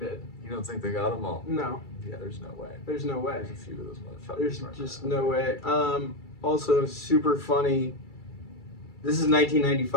You don't think they got them all? No. Yeah, there's no way. There's no way. There's a few of those motherfuckers. There's just no way. Also, super funny. This is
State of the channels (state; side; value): late; right; 2.3 ms